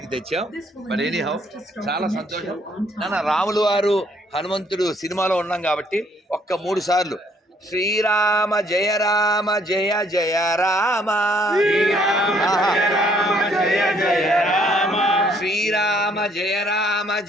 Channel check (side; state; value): both; normal; correlation 0.65